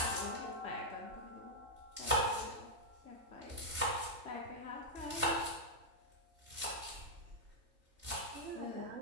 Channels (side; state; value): left; late; 3.3 ms